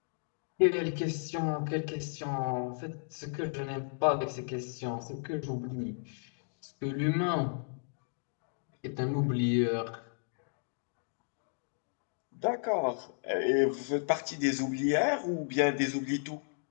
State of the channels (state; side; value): silent; right; digital silence